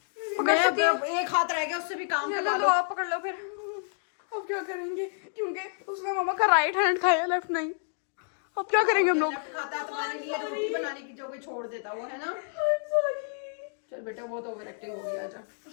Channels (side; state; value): right; silent; digital silence